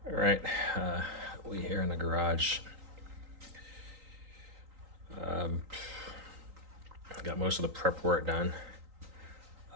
All right, we here in the garage. Got most of the prep work done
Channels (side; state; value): left; late; 3.9 ms